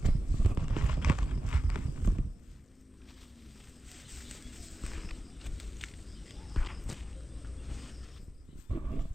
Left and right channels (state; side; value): normal; both; correlation 0.94